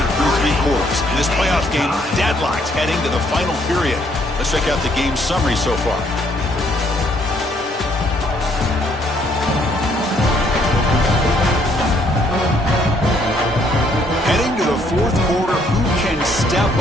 through 3 quarters. In this playoff game, deadlocked heading to the final period. Let's check out the game summary so far. Heading to the 4th quarter, who can step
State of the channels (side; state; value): both; normal; correlation 0.68